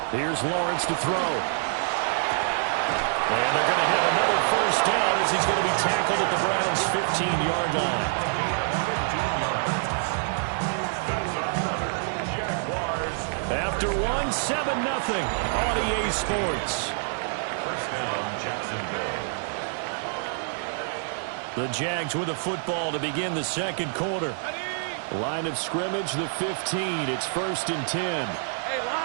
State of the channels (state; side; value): silent; left; digital silence